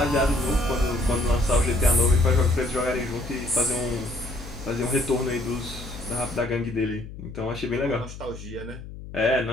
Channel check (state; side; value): noise; left; hum, 13 dB below the sound